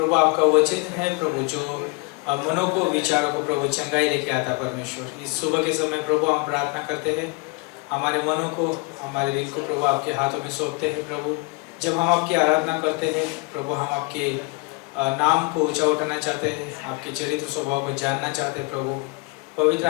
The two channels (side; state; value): right; quieter; 28.5 dB